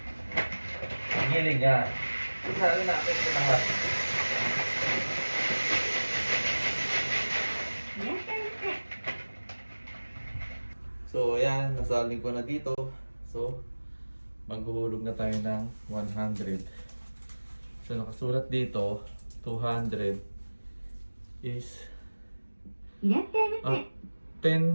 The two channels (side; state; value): both; inverted; correlation -1.00